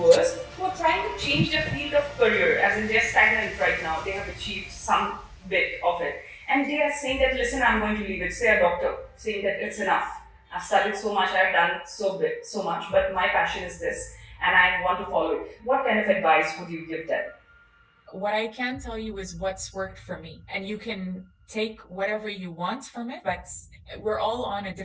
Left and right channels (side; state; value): both; identical; correlation 1.00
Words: who are trying to change their field of career, as in they're stagnant right now, they have achieved some bit of it, and they are saying that, listen, I'm going to leave it. Say a doctor saying that it's enough. I've studied so much, I've done so much, but my passion is this, and I want to follow it. What kind of advice would you give them? What I can tell you is what's worked for me, and you can take whatever you want from it, but we're all on a